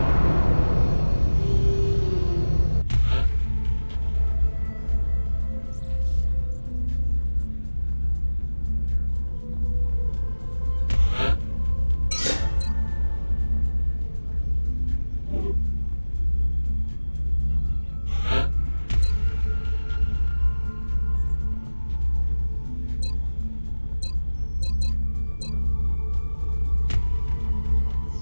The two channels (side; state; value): both; inverted; correlation -1.00